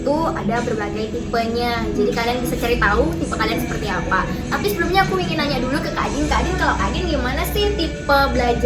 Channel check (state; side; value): identical; both; correlation 1.00